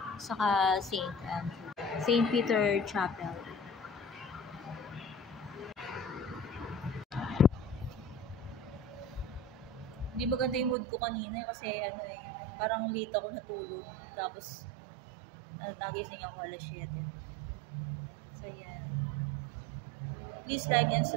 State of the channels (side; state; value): left; drops out; at 10.8 s